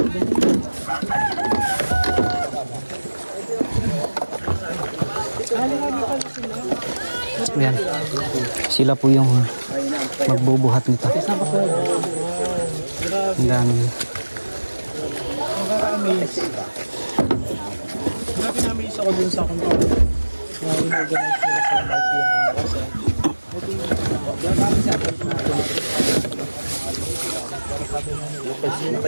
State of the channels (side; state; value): both; inverted; correlation -1.00